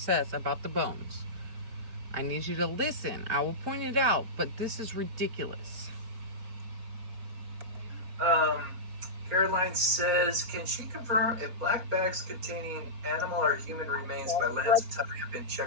about the bones. I need you to listen. I will point it out, but this is ridiculous. Caroline says, can she confirm if black bags containing animal or human remains by Lance and Tucker have been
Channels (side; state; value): left; late; 4.2 ms